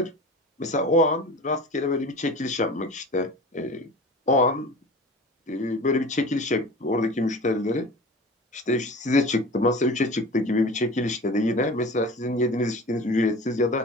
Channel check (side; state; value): both; normal; correlation 0.37